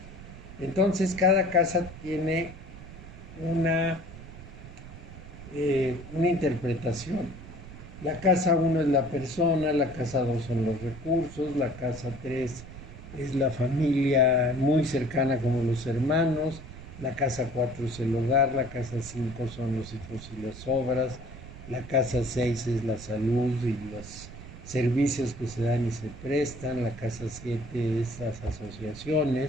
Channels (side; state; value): right; noise; rumble, 15 dB below the sound